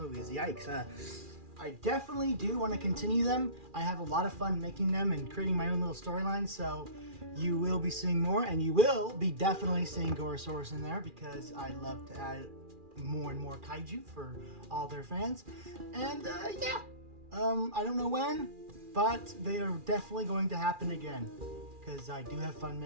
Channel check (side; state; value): left; late; 2.4 ms